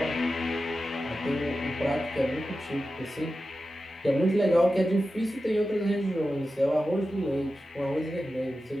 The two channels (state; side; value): normal; both; correlation 0.92